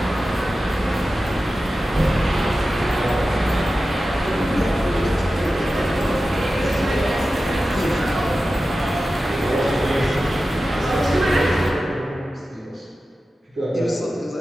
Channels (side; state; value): both; normal; correlation 0.94